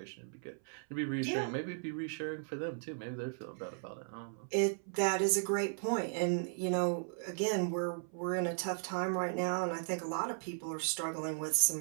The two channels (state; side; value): silent; left; 54 dB below the other